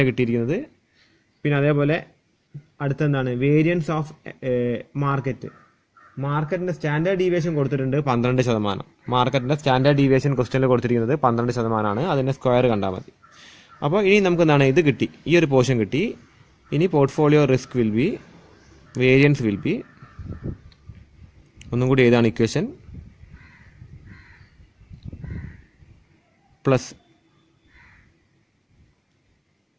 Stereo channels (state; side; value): identical; both; correlation 1.00